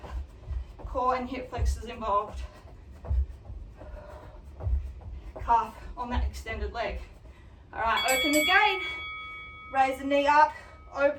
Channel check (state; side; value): identical; both; correlation 1.00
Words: Core and hip flexors involved. Calf on that extended leg. All right, open the gate, raise the knee up,